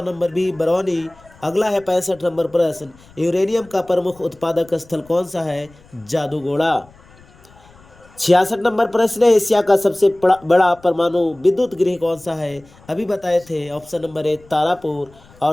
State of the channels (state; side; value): noise; left; rumble, 26 dB below the sound